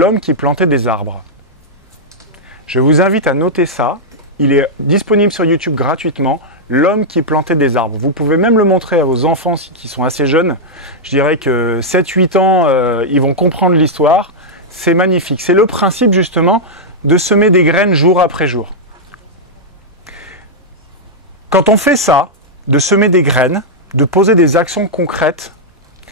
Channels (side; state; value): both; normal; correlation -0.06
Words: qui plantait des arbres. Je vous invite à noter ça. Il est disponible sur YouTube gratuitement. L'homme qui plantait des arbres. Vous pouvez même le montrer à vos enfants qui sont assez jeunes. Je dirais que 7-8 ans, ils vont comprendre l'histoire. C'est magnifique. C'est le principe justement de semer des graines jour après jour. Quand on fait ça, de semer des graines, de poser des actions concrètes,